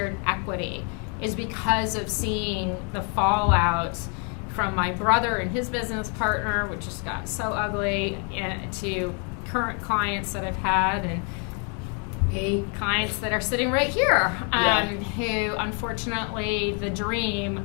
equity, is because of seeing the fallout from my brother and his business partner, which just got so ugly, to current clients that I've had, and clients that are sitting right here, who unfortunately the dream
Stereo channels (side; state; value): right; quieter; 38.2 dB